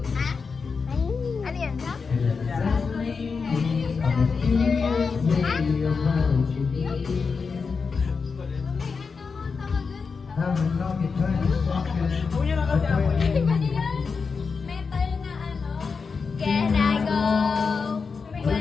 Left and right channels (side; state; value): right; quieter; 5.1 dB